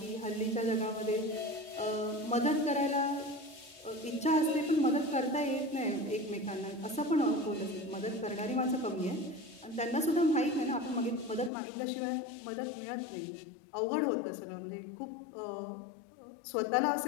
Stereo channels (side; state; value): right; drops out; at 11.5 s